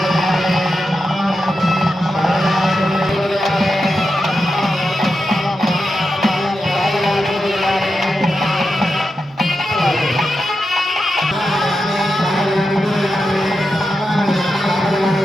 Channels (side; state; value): both; normal; correlation 0.89